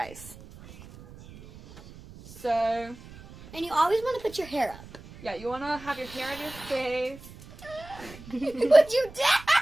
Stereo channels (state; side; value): noise; right; rumble, 18 dB below the sound